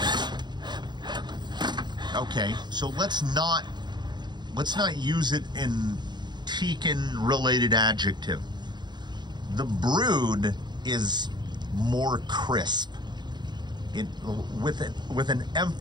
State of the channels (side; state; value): left; late; 0.21 ms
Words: Okay, so let's not use it in Tekin-related adjective. The Brood is more crisp. With an